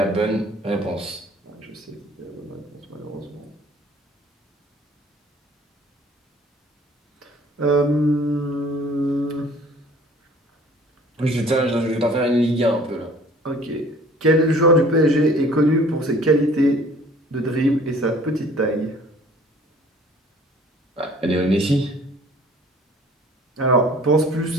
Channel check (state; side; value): normal; both; correlation 0.52